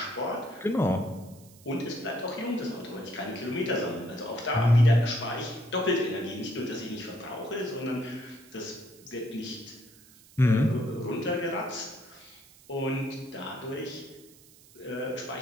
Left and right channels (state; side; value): noise; right; hiss, 24 dB below the sound